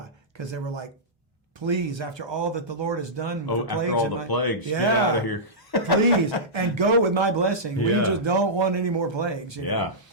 because they were like, please, after all that the Lord has done with the plagues. After all the plagues, get out of here. Please, and go with my blessing. We just don't want any more plagues. You know?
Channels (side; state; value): both; normal; correlation -0.14